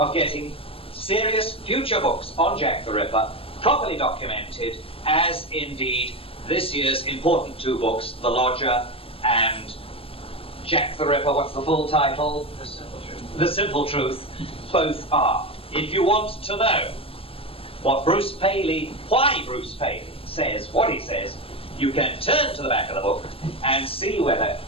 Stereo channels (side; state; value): right; late; 0.27 ms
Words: getting serious future books on Jack the Ripper properly documented, as indeed this year's important 2 books, The Lodger and Jack the Ripper, what's the full title? The Simple Truth. The Simple Truth. Both are. If you want to know why Bruce Paley says what he says, you can turn to the back of the book and see whether